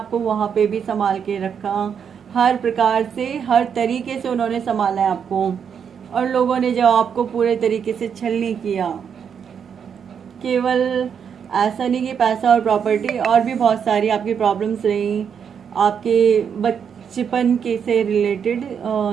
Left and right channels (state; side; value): quieter; left; 7.4 dB